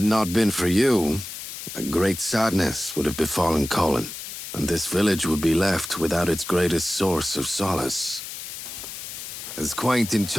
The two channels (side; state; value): left; noise; hiss, 9 dB below the sound